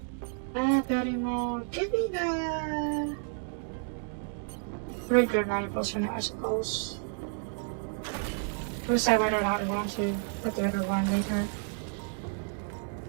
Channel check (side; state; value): left; silent; 57 dB below the other